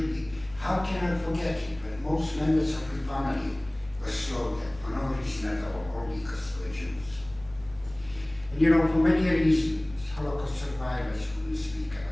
be, how can I forget it when most members of the family were slaughtered for no reason at all because they were Jews. And you know, for many reasons, Holocaust survivors wouldn't speak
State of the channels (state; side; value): noise; left; hum, 22 dB below the sound